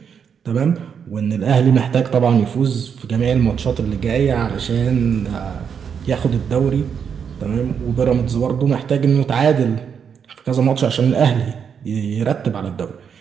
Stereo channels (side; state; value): left; quieter; 7.2 dB